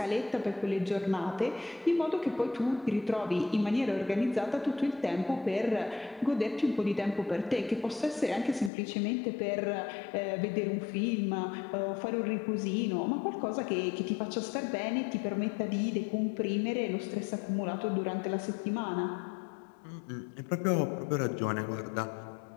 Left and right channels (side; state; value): right; drops out; at 8.7 s